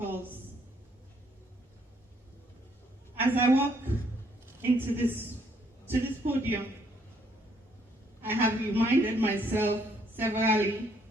As I walk into this to this podium, I have reminded myself severally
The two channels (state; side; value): normal; both; correlation 0.68